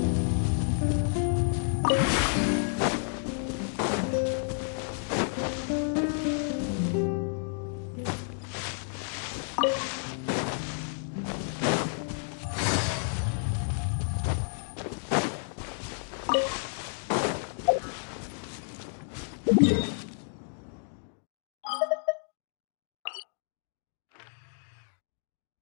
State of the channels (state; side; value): silent; right; digital silence